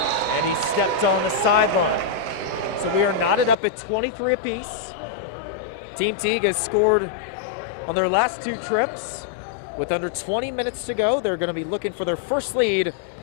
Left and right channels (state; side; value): drops out; right; at 3.6 s